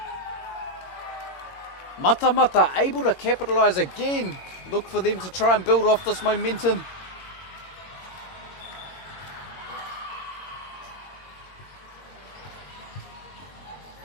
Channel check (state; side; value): late; right; 22 ms